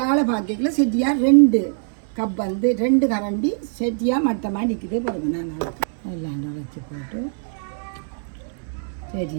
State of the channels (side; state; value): left; silent; 64 dB below the other